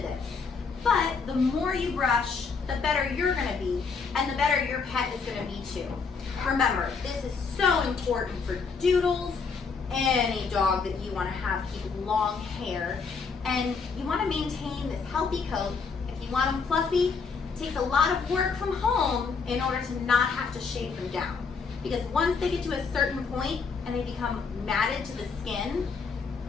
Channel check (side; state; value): right; quieter; 5.1 dB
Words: but the more you brush, the better you're going to be, and the better your pet is going to be too. Remember, this is so important for Doodles, any dog that you want to have keep long hair, and you want to maintain this healthy coat. If you want them fluffy, it takes a lot of work from home in order to not have to shave them down. Because once they get to a certain point and they become matted to the skin,